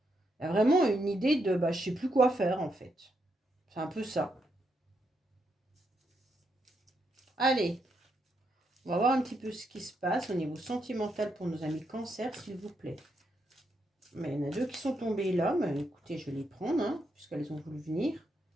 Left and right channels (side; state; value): both; normal; correlation 0.80